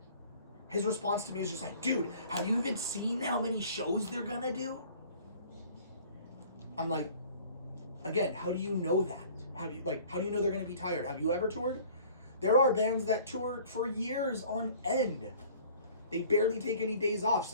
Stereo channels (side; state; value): both; inverted; correlation -0.50